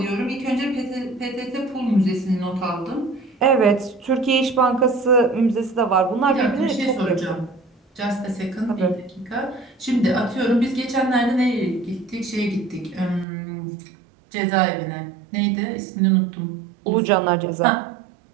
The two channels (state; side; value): drops out; left; at 13.2 s